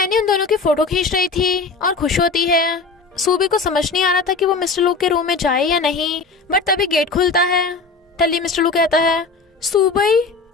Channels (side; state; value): right; quieter; 4.2 dB